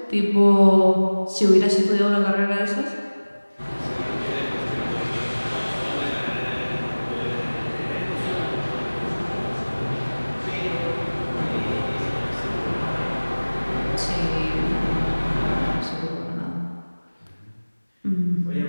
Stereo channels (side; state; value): both; inverted; correlation -1.00